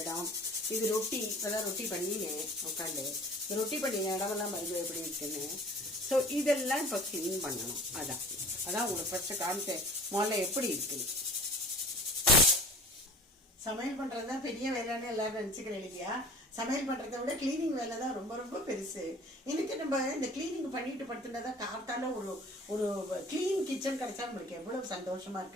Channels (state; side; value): normal; both; correlation 0.44